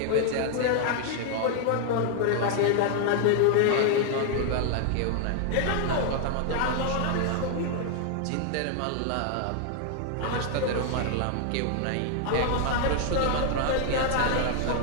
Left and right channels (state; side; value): different; both; correlation 0.00